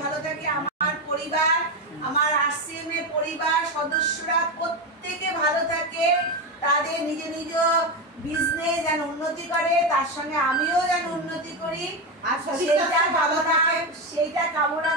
ভালো থাকে। আমার পরিবার, আমার আরসিএম এর পরিবার সদস্যরা প্রত্যেকে ভালো থাকে, তাদের নিজ নিজ বিজনেস যেন উন্নতি করে, তার সঙ্গে আমিও যেন উন্নতি করি। আর সেইটা কামনা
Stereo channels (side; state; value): both; normal; correlation 0.13